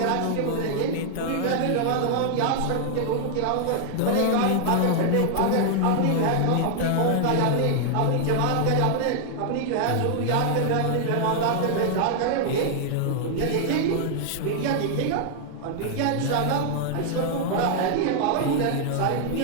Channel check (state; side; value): different; both; correlation 0.00